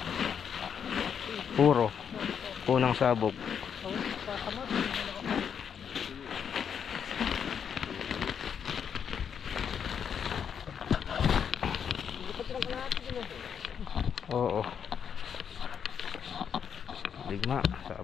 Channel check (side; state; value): right; quieter; 7.6 dB